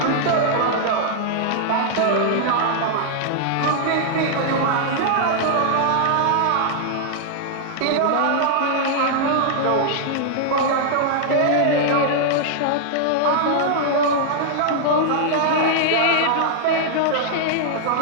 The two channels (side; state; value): both; different; correlation -0.01